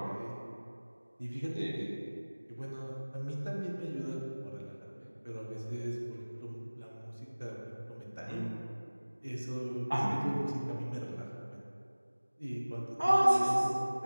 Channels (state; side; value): inverted; both; correlation -1.00